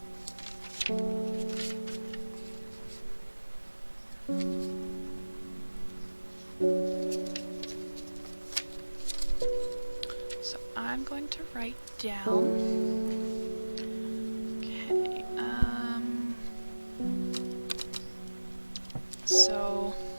So I'm going to write down... Okay, so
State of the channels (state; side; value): inverted; both; correlation -1.00